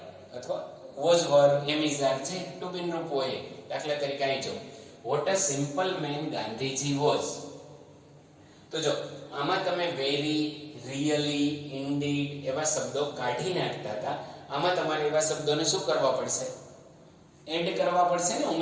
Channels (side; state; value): both; identical; correlation 1.00